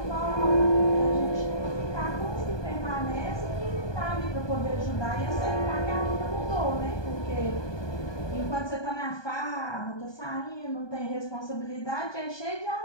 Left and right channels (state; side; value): late; right; 1.2 ms